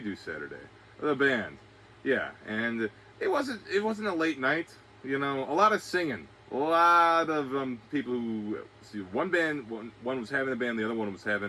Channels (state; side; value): identical; both; correlation 1.00